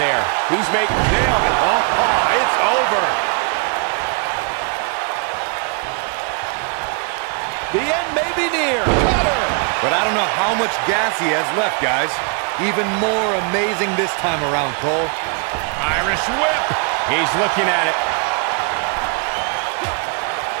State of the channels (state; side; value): quieter; left; 37.2 dB